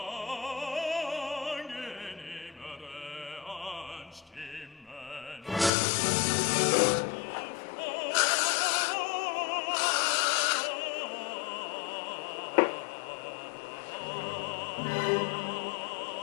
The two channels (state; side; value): drops out; right; at 5.7 s